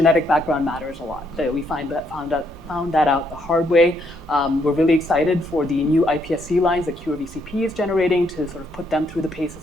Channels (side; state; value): both; normal; correlation 0.73